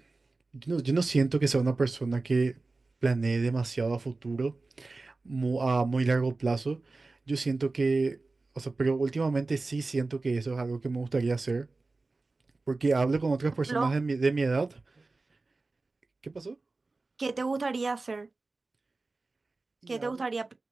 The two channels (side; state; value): left; quieter; 3.5 dB